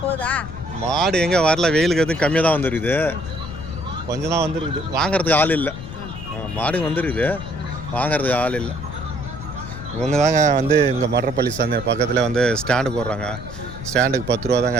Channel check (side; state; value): left; noise; rumble, 11 dB below the sound